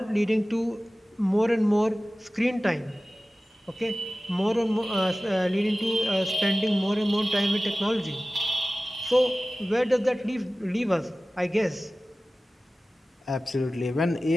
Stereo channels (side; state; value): both; normal; correlation 0.96